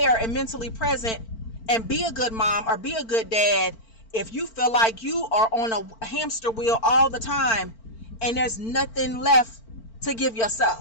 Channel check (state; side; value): late; right; 4.5 ms